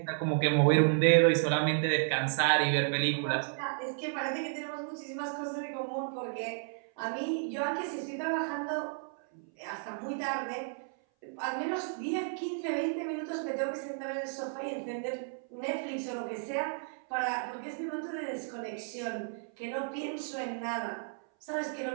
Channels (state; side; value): silent; left; 56 dB below the other